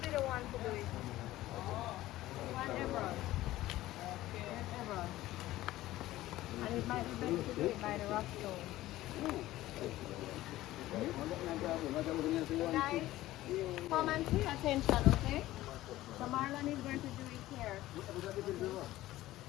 the one to do it. You want Everon. Yes, Everon. And it might be better to do it by the rock stone. So guys, come and pay attention, okay? So Marlon is going to do it here.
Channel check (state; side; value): quieter; right; 15.9 dB